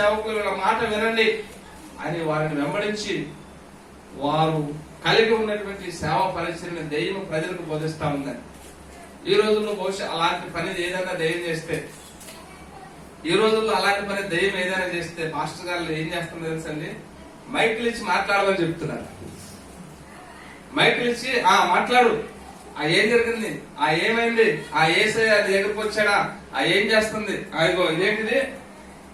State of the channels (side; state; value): both; identical; correlation 1.00